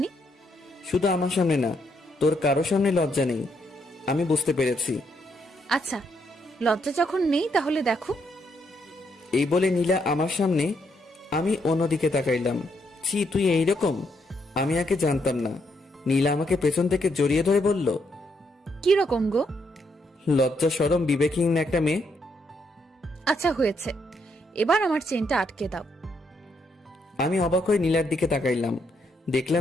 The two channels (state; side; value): normal; both; correlation 0.76